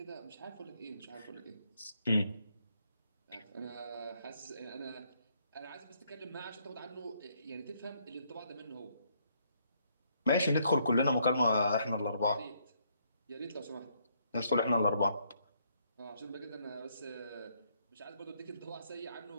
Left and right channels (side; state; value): both; inverted; correlation -0.71